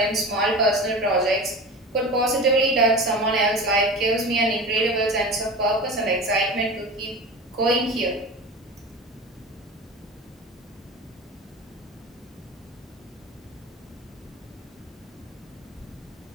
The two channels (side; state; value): both; normal; correlation 0.32